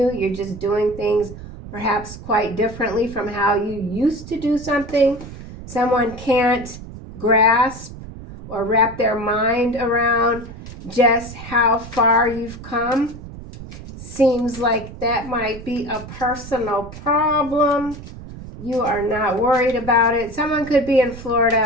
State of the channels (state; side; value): noise; right; rumble, 13 dB below the sound